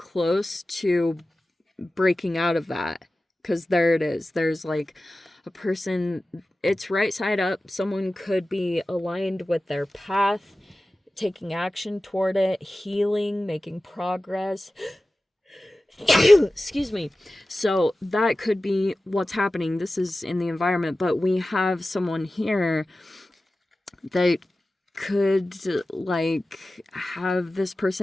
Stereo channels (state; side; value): normal; both; correlation 0.95